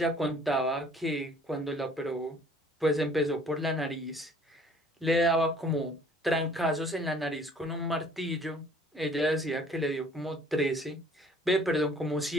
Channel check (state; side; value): normal; both; correlation 0.55